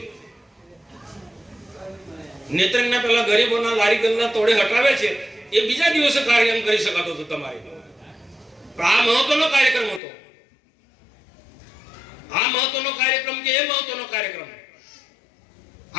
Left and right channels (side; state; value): right; drops out; at 10.0 s